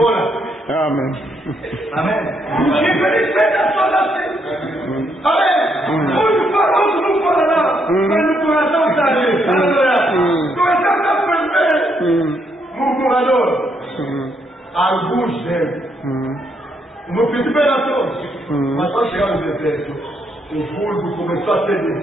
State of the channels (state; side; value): normal; both; correlation 0.75